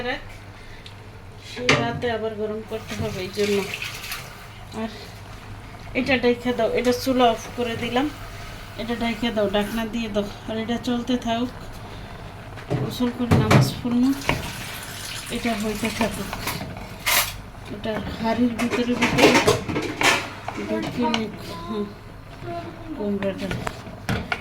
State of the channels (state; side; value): identical; both; correlation 1.00